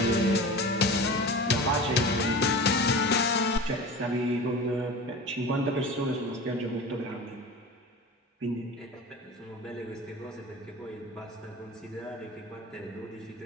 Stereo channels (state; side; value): normal; both; correlation 0.34